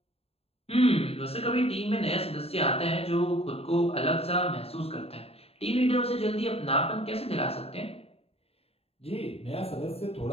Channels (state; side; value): late; right; 0.29 ms